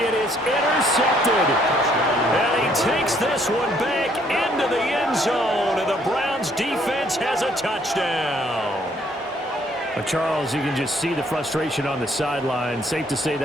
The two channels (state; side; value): normal; both; correlation 0.66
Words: is intercepted. And he takes this one back into the end zone, and the Browns defense has a touchdown. Charles, you can just see the frustration on the sideline. Safe to say